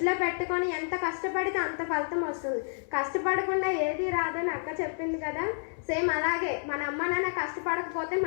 పెట్టుకొని ఎంత కష్టపడితే అంత ఫలితం వస్తుంది. కష్టపడకుండా ఏది రాదని అక్క చెప్పింది కదా, సేమ్ అలాగే మన అమ్మ నాన్న కష్టపడకపోతే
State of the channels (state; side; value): silent; right; 58 dB below the other